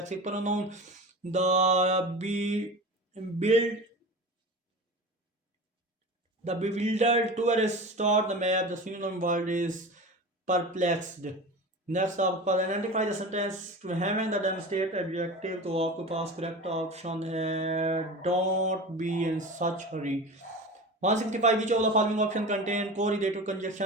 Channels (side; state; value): both; normal; correlation 0.31